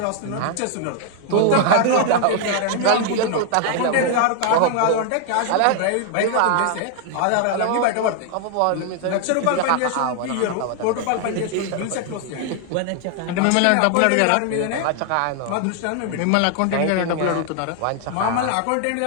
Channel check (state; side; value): different; both; correlation 0.00